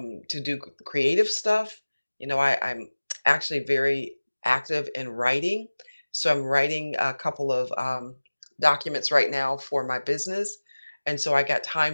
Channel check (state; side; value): inverted; both; correlation -1.00